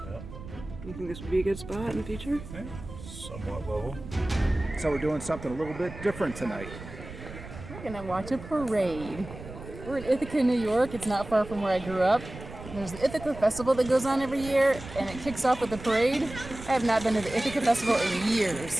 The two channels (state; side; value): noise; right; rumble, 13 dB below the sound